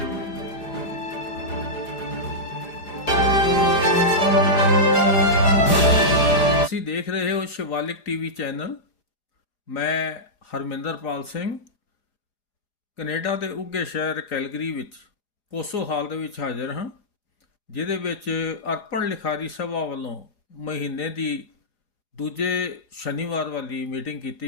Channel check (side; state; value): right; late; 4.9 ms